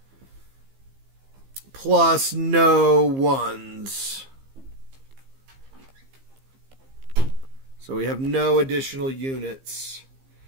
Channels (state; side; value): late; left; 15 ms